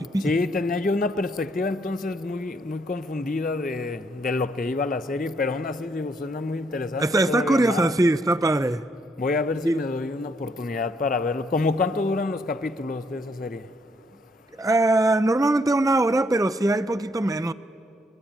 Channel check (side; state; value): both; normal; correlation 0.71